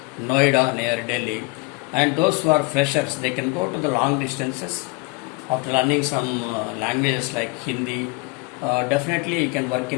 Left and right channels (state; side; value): quieter; right; 25.7 dB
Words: Noida near Delhi, and those who are freshers, they can go to the long distances after learning some languages like Hindi. Definitely you can work